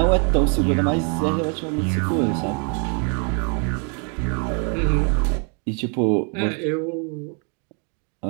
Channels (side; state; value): left; quieter; 38.7 dB